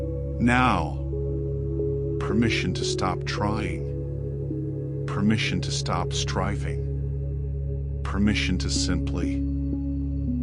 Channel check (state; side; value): identical; both; correlation 1.00